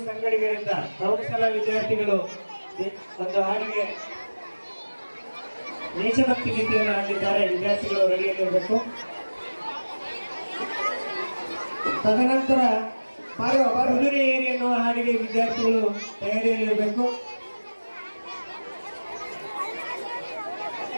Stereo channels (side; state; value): both; inverted; correlation -1.00